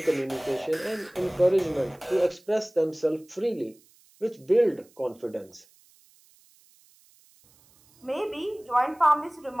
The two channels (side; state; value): right; noise; hiss, 30 dB below the sound